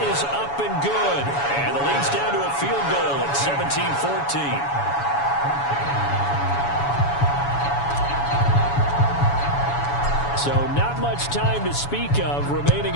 is up and good. And the lead's down to a field goal at 17-14. So not much time to speak of remaining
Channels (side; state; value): right; late; 7.1 ms